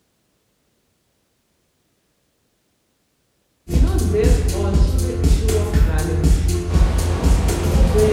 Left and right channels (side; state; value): both; identical; correlation 1.00